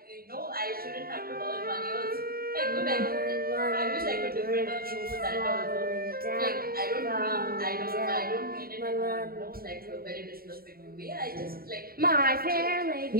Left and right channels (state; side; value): late; left; 0.43 ms